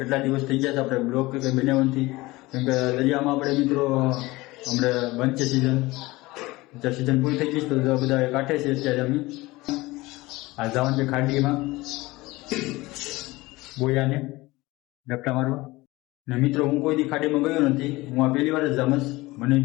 દિવસ થઈ ગયા છે આપણે બ્લોગ કે બનાવવાથી, કેમ કે દરિયામાં આપણે મિત્રો હમણાં બંધ છે સિઝન પૂરી થઈ ગઈ તો બધા કાંઠે છે અત્યારે અમે આ જવાનું છે ખાડીમાં બોયાને ડપટા મારવા. ને મિત્રો હું કોઈ દી ખાડીમાં ગયો નથી, હું આ પહેલી વાર જ જામસ, મને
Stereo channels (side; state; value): right; quieter; 20.6 dB